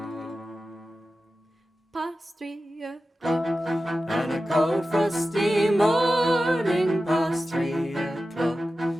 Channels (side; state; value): both; normal; correlation 0.94